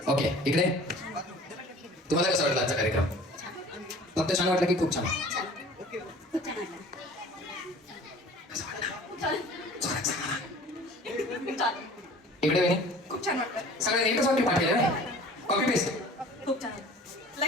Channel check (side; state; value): both; normal; correlation 0.46